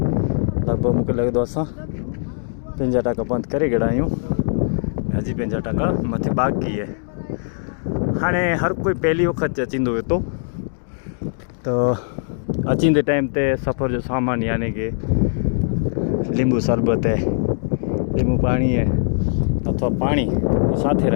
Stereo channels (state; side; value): silent; right; digital silence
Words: લગભગ મૂકે લગે તો અસાं 50% બંધ કરી ગया आहियूं हजी 50% मथे बाक़ी है। हाणे हर कोई पहली वक्त अचींदो हुयो तो अचींदे टाइम ते सफ़र जो सामान यानी कि लींबू शरबत है, लींबू पानी है अथवा पानी साथे